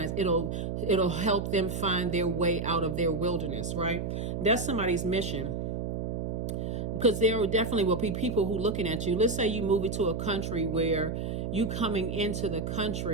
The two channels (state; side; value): noise; right; hum, 3 dB below the sound